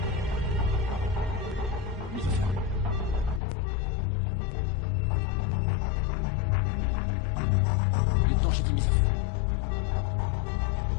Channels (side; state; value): right; drops out; at 3.4 s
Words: Mise au feu. Lieutenant, j'ai dit mise à feu.